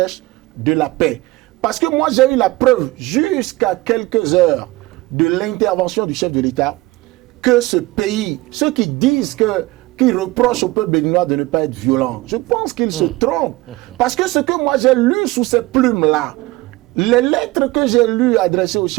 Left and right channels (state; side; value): quieter; left; 20.4 dB